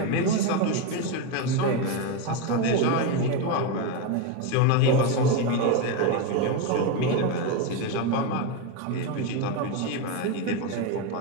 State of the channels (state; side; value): different; both; correlation 0.04